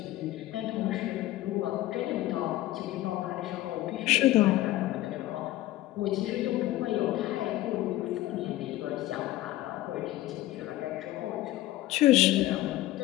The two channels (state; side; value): quieter; right; 16.0 dB